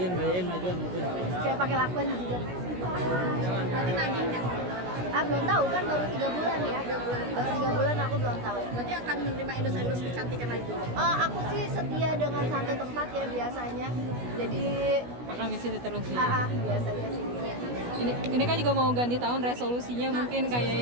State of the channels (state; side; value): late; left; 16 ms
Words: kayak pakai lakban gitu. berarti nagihnya. Belum tahu kan, baru 3 bulan ya. Baru 3 bulan aku belum tahu. Berarti akan menerima endorse kecantikan lagi. Aku sih setia dengan satu tempat ya biasanya. Jadi Akan ke situ terus ya. biasanya sih. Ini kan juga mau ganti tahun resolusinya mungkin kayak